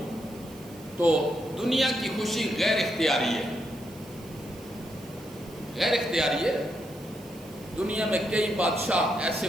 تو دنیا کی خوشی غیر اختیاری ہے، غیر اختیاری ہے۔ دنیا میں کئی بادشاہ ایسے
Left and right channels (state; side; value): noise; right; hiss, 22 dB below the sound